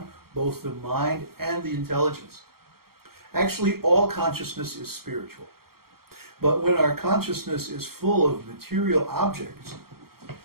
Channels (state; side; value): late; left; 0.94 ms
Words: both the mind and the intelligence. Actually, all consciousness is spiritual. But when our consciousness is full of material objects,